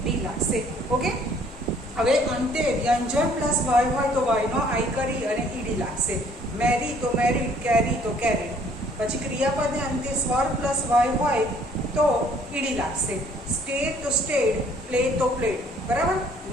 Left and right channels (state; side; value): normal; both; correlation 0.60